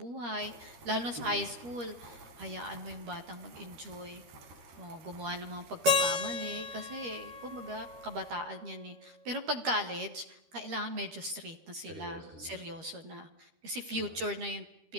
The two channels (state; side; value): late; left; 13 ms